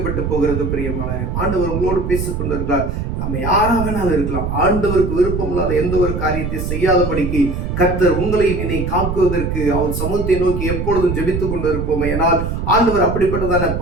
போகிறது. பிரியமான ஆண்டவர் உங்களோடு பேசிக் கொண்டிருக்கிறார். நம்ம யாராக வேணாலும் இருக்கலாம். ஆண்டவருக்கு விருப்பம் இல்லாத எந்த ஒரு காரியத்தை செய்யாதபடிக்கு கர்த்தர் உங்களையும் என்னை காக்குவதற்கு அவர் சமூகத்தை நோக்கி எப்பொழுதும் ஜெபித்துக் கொண்டிருப்போம். ஏனால் ஆண்டவர் அப்படிப்பட்டதான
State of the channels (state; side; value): noise; right; rumble, 3 dB below the sound